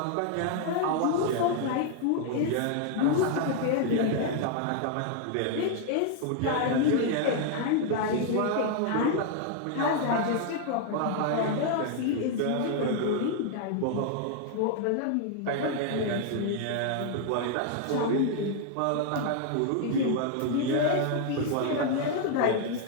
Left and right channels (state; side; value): different; both; correlation 0.00